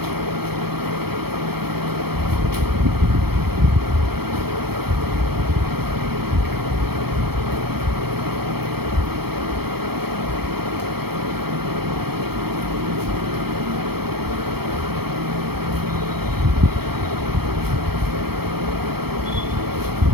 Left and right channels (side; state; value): left; late; 0.96 ms